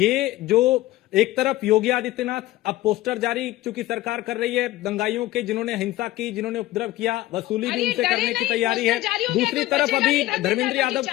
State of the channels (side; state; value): right; quieter; 16.5 dB